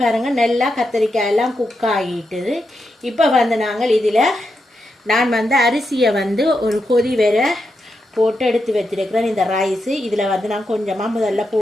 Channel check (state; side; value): normal; both; correlation 0.85